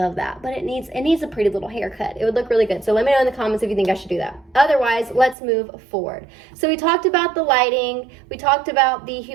of that, but it needs a pretty little haircut. It would look really good. So let me know in the comments if you think I should do that. Otherwise, let's move forward. So we talked about the lighting. We talked about the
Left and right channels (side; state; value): left; drops out; at 5.4 s